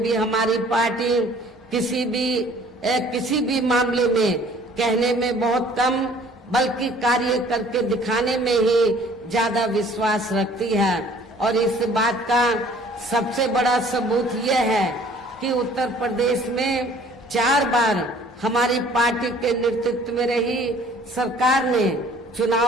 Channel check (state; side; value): normal; both; correlation 0.54